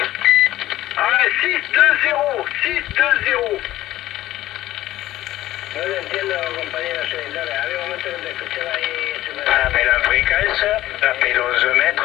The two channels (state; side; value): quieter; right; 15.1 dB